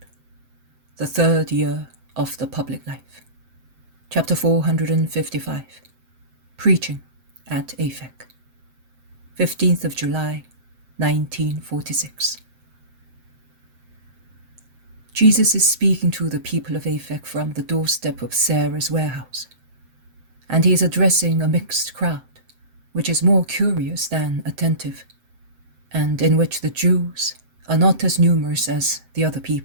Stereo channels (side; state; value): left; late; 7.7 ms